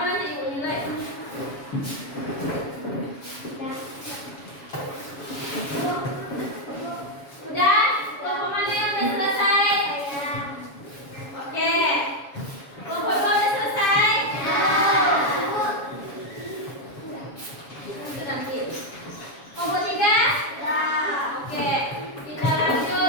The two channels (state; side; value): late; right; 7.2 ms